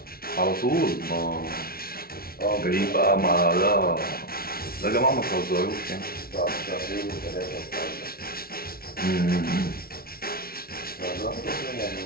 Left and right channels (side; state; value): right; late; 0.44 ms